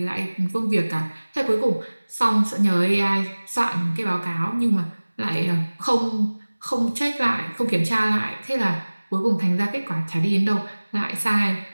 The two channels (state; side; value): inverted; both; correlation -1.00